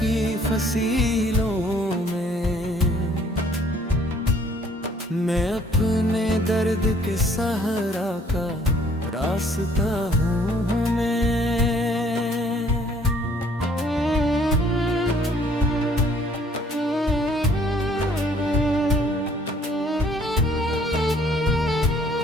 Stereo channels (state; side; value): normal; both; correlation 0.60